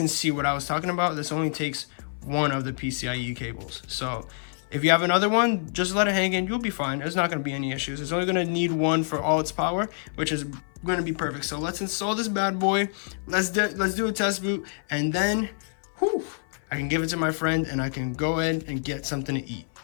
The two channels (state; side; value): silent; right; 56 dB below the other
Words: see what I was talking about, this only takes one of the PCIe cables. So if you have another one, just let it hang in, you'll be fine. There's not going to be any issues. It's only going to need one for all its power, which is going to be perfect. So let's install this bad boy. Let's do a test boot, and then whew, I can give it to my friend and I can go ahead and get something to eat.